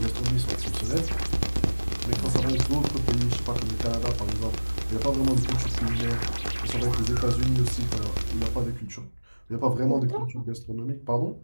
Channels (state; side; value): inverted; both; correlation -1.00